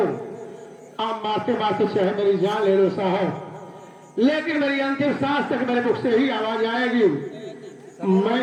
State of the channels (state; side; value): identical; both; correlation 1.00